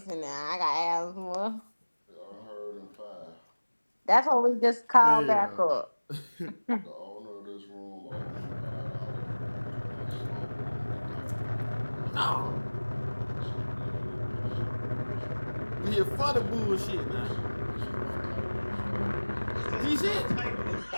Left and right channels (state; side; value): inverted; both; correlation -1.00